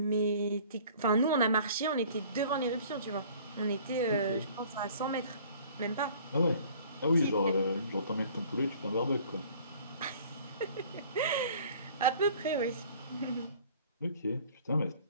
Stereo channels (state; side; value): inverted; both; correlation -0.51